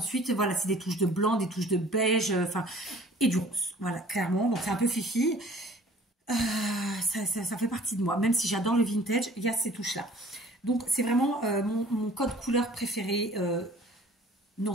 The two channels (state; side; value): normal; both; correlation 0.50